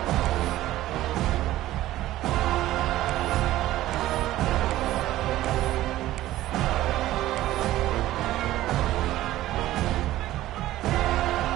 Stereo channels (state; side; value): quieter; left; 15.1 dB